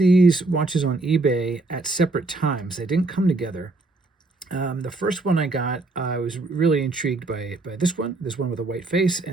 watches on eBay at separate times. They didn't come together. The first one I got, I was really intrigued by this one with a white face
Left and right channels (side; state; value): left; quieter; 3.2 dB